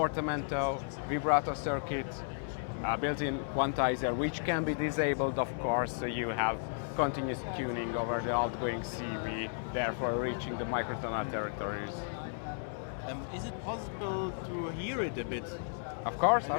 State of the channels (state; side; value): silent; right; digital silence